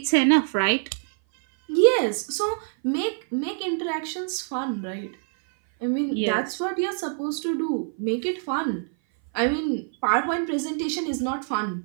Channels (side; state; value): left; silent; 57 dB below the other